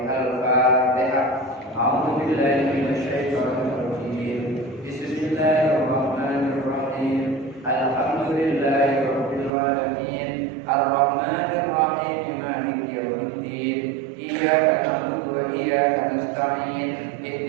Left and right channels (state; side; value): drops out; left; at 9.5 s